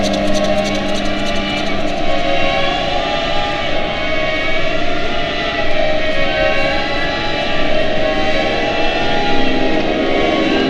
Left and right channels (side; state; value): both; identical; correlation 1.00